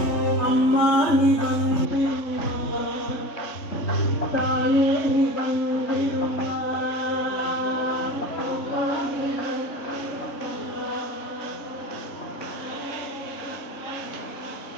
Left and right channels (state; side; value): late; right; 3.5 ms